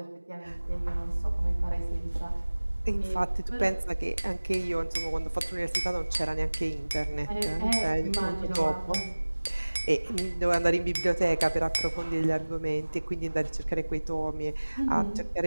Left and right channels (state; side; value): inverted; both; correlation -1.00